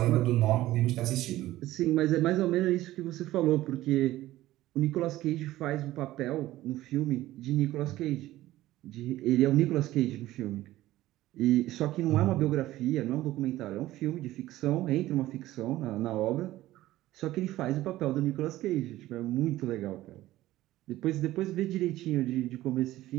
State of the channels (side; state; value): left; quieter; 15.8 dB